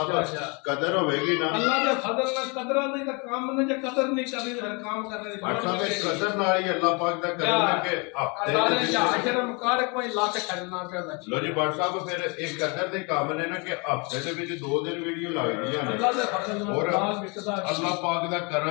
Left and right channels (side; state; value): right; quieter; 31.3 dB